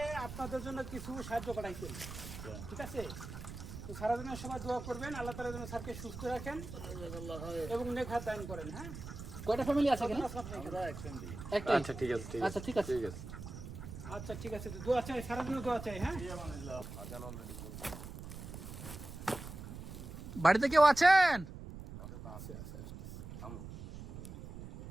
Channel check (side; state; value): right; noise; rumble, 10 dB below the sound